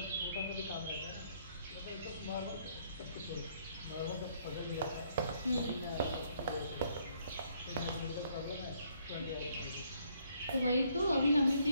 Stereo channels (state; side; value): inverted; both; correlation -0.68